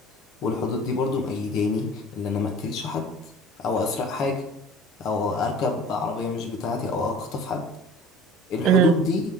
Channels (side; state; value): both; normal; correlation 0.43